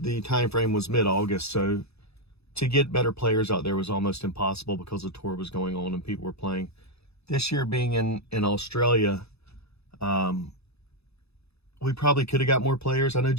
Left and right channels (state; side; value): late; right; 0.79 ms